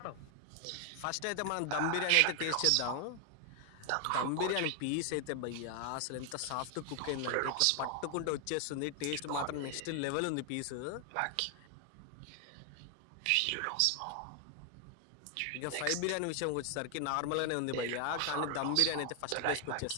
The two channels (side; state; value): both; different; correlation 0.00